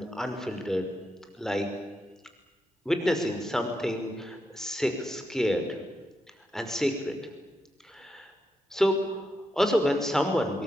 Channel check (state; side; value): normal; both; correlation 0.84